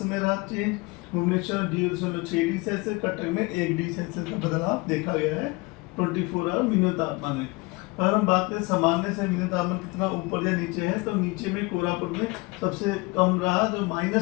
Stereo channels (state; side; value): quieter; right; 25.0 dB